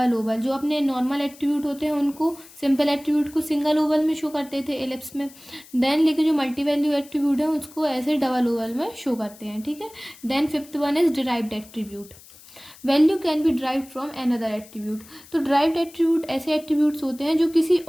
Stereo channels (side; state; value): left; noise; hiss, 22 dB below the sound